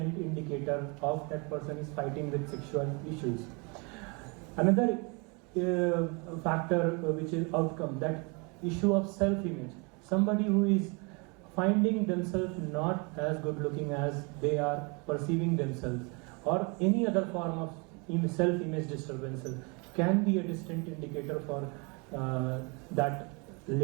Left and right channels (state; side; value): quieter; left; 31.2 dB